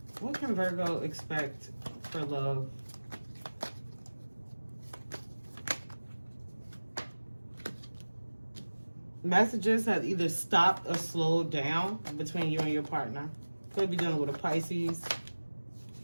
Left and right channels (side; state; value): both; inverted; correlation -1.00